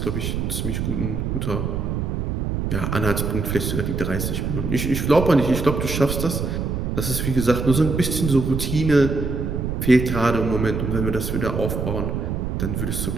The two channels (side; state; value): right; noise; rumble, 2 dB below the sound